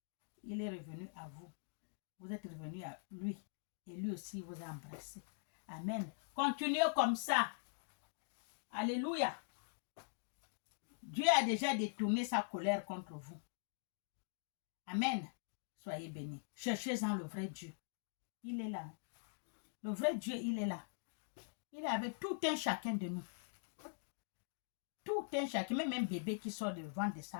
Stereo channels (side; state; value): right; silent; digital silence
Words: Il est revenu à vous. Vous êtes revenu à lui. Et lui aussi vous a embrassé. Amen. Continuez comme ça. Alléluia. Dieu a déjà détourné sa colère contre vous. Amen. Soyez bénis. Cherchez-en le vrai Dieu. Il est là. Le vrai Dieu, il est là. Il est avec tout un chacun de nous. Tout un chacun, même un bébé qui sort du ventre de